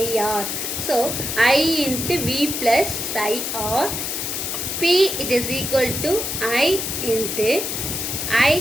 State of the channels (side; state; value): left; noise; hiss, 3 dB below the sound